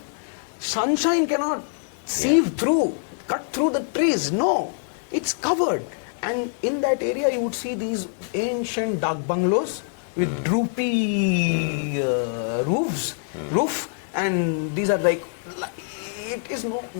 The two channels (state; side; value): silent; right; digital silence